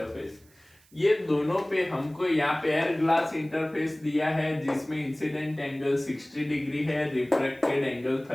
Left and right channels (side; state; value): right; noise; hiss, 30 dB below the sound